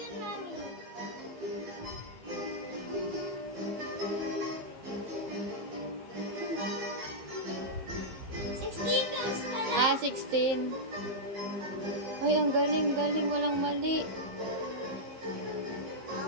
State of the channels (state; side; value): late; left; 15 ms